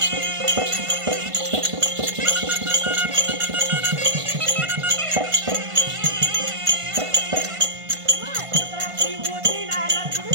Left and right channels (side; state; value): left; late; 1.5 ms